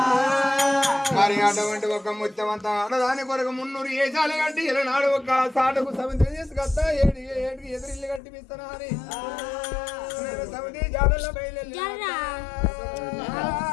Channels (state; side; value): drops out; right; at 8.2 s